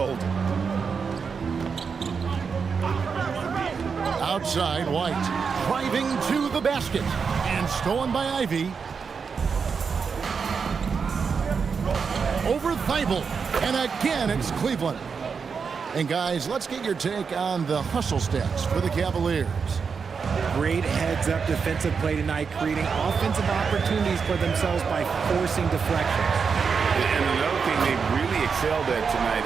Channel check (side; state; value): left; quieter; 5.8 dB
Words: Outside, White driving to the basket and stolen by Ivy. Over Thybulle, and again it's Cleveland. And guys, let's get your take on the hustle stats for the Cavaliers. Great heads-up defensive play tonight, creating offensive opportunities for themselves by forcing deflections. And another thing they've really excelled at tonight